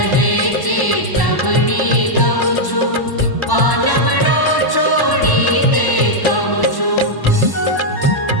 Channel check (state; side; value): late; right; 1.0 ms